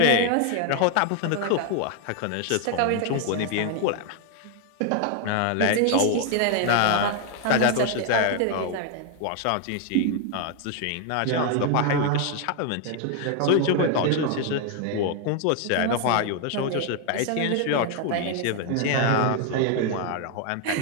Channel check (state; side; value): different; both; correlation 0.00